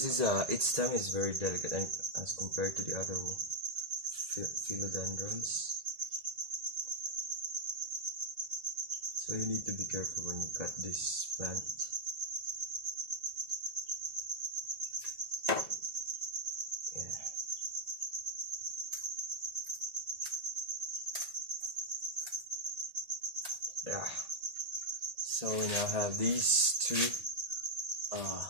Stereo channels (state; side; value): late; left; 1.7 ms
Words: is its stem is very delicate and as compared to the other philodendrons. So you need to be careful when you cut this plant. Yeah. So we now have these two